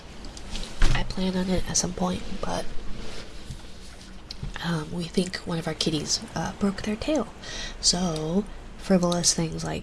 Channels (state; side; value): identical; both; correlation 1.00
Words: I plan on it at some point, but we think one of our kitties broke their tail. So frivolous things like